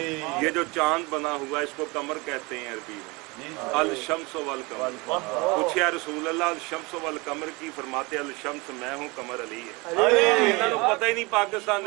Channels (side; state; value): left; quieter; 25.9 dB